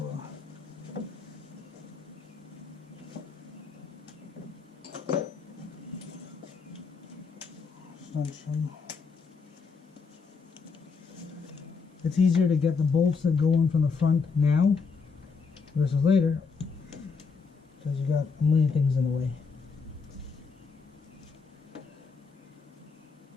a extension. It's easier to get the bolts that go in from the front now versus later, because you got a million things in the way.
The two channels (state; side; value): quieter; right; 5.1 dB